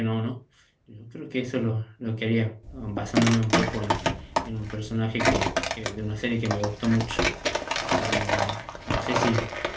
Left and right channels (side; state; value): both; identical; correlation 1.00